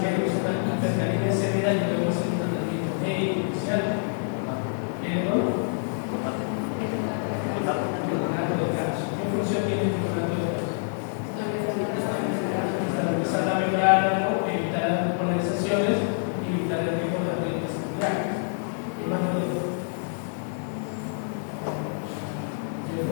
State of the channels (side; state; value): right; silent; digital silence